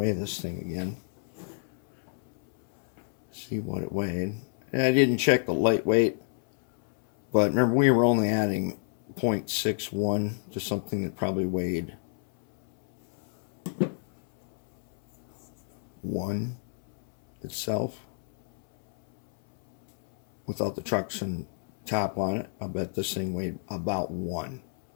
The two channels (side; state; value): right; silent; 59 dB below the other